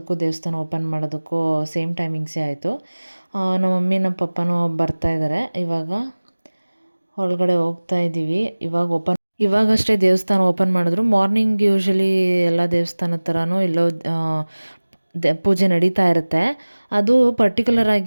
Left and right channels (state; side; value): inverted; both; correlation -1.00